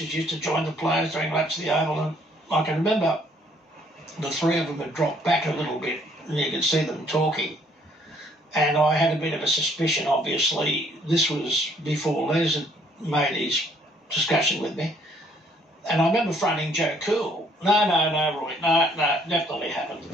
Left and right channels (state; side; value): normal; both; correlation 0.64